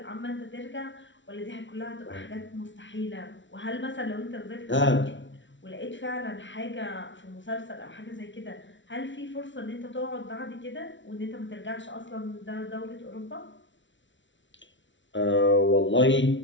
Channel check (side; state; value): right; late; 0.55 ms